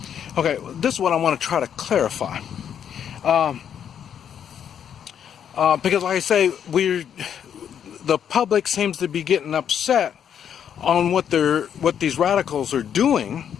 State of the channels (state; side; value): quieter; right; 8.7 dB